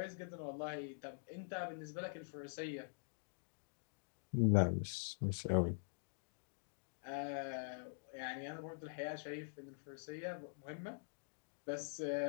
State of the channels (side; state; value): right; silent; digital silence